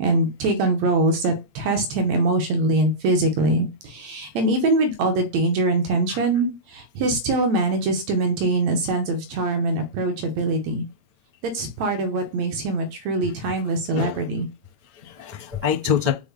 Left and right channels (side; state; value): left; late; 9.0 ms